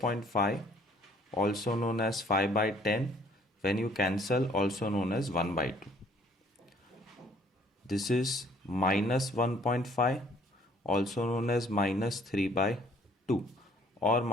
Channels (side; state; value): both; normal; correlation 0.60